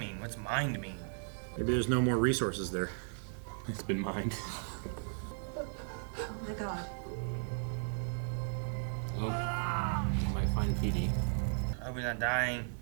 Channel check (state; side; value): silent; left; 54 dB below the other